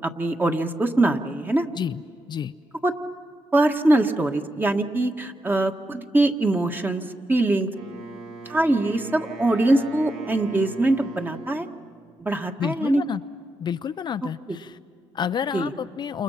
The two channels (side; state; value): both; normal; correlation 0.84